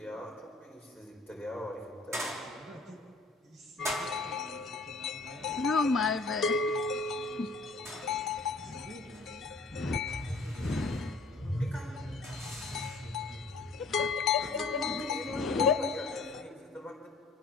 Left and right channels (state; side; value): quieter; right; 3.7 dB